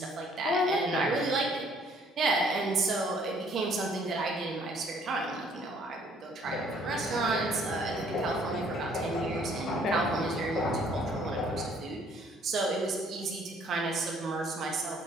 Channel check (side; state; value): both; normal; correlation 0.61